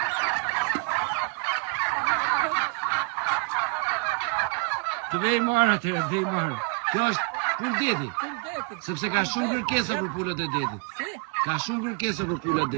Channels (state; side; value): quieter; left; 34.3 dB